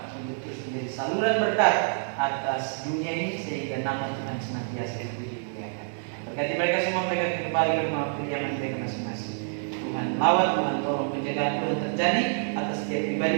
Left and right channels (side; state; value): left; silent; 60 dB below the other